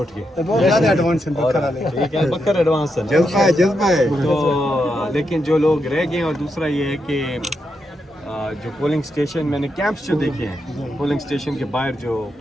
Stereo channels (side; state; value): both; normal; correlation 0.83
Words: गए। बहुत ज़्यादा एडवांस है बकर एडवांस है, जज्बा है। तो लेकिन जो लोग रह गए, और दूसरा ये है कि जो पोलिंग स्टेशन मैंने कैंप्स जो देखे हैं, पोलिंग स्टेशन के बाहर जो